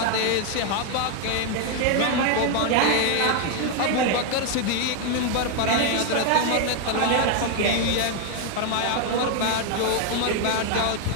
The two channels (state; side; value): different; both; correlation 0.01